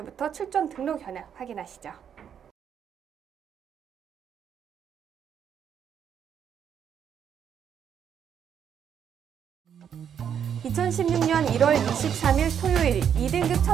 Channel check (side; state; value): left; quieter; 8.4 dB